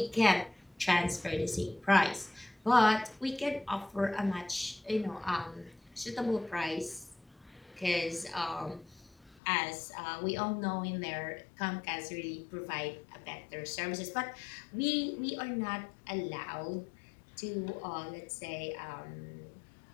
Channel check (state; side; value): drops out; right; at 9.4 s